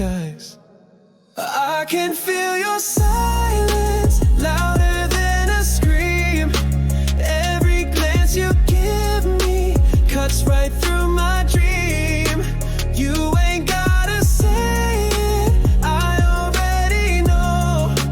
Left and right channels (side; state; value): both; identical; correlation 1.00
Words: I can feel your silence, louder than a scream. Every glance you give me cuts right through my dream. You ain't gotta say it, I already know.